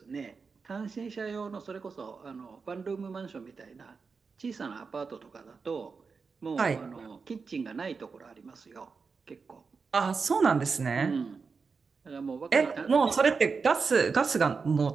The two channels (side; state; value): left; quieter; 5.0 dB